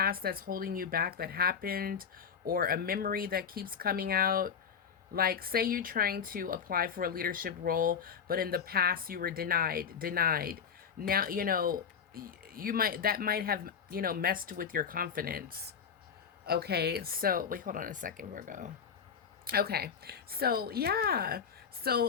that's holding you back that happened, or a memory that keeps coming out. Like, say you're trying to apply for a leadership role, but in the past you were denied. Now, you might, that might have, messed with your confidence. Okay, so wait, hold on a second, Virgo. Okay, so yeah,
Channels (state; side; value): quieter; right; 7.0 dB